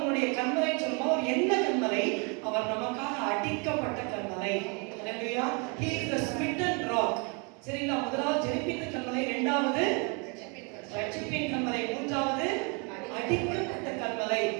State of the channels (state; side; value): quieter; left; 33.9 dB